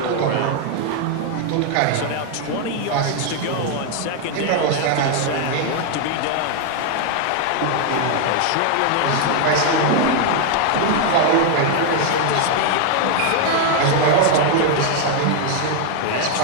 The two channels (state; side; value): different; both; correlation 0.00